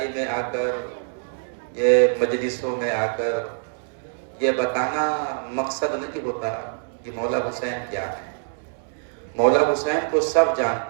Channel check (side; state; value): left; silent; 62 dB below the other